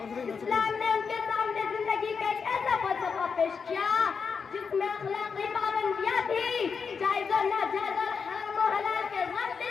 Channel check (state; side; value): quieter; right; 5.7 dB